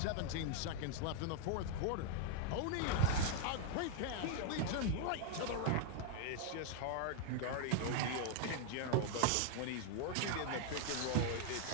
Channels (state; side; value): different; both; correlation 0.00